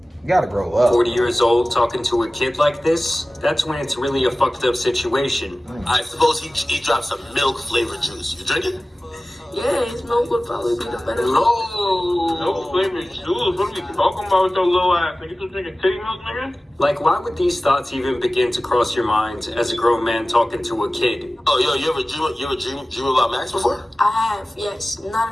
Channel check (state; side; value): normal; both; correlation 0.97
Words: You gotta grow up. 40 years old talking to a kid like this, that's when it's really a fucked up situation. I suppose he dropped some milk flavored juice. You drink it? Yeah, his milk would probably be the better. No flavored juice. What are we talking about with your little ass? Nigga, you drinking titty milk, nigga? Like, why would these thoughts even begin to cross your mind as a grown man talking to a kid? Oh, yo, you ever dream about Max before? I have, yes.